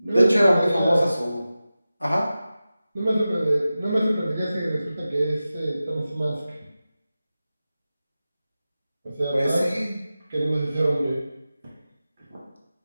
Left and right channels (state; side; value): inverted; both; correlation -0.94